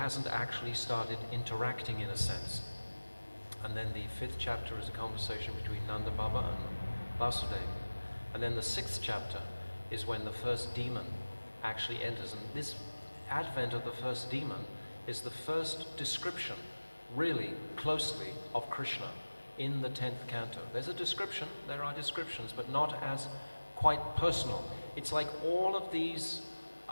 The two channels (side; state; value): both; inverted; correlation -1.00